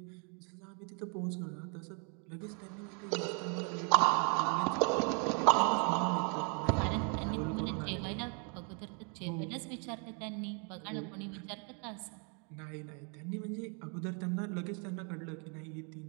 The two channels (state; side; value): quieter; left; 37.4 dB